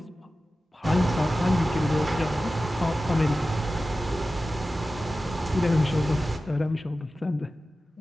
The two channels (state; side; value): normal; both; correlation 0.95